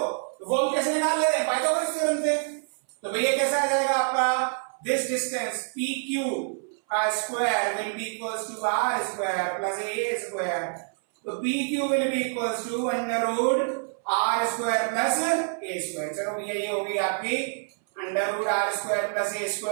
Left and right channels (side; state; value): left; silent; 60 dB below the other